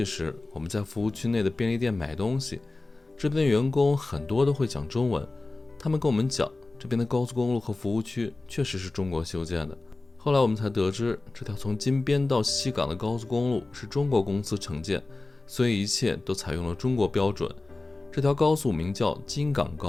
时，我们在服务区内的便利店买东西。这边的员工很多都会讲中文，他们跟我们讲，这边的高速公路和服务区确实是中国修建的。后来我们才得知，这条从金边到西港的高速公路是中国公司承建，所以一切都采用了中国标准。这条高速名叫金港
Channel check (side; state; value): right; quieter; 3.2 dB